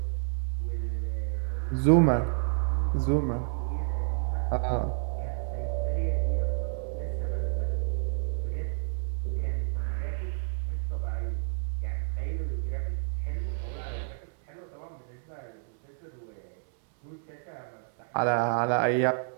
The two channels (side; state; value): left; silent; 58 dB below the other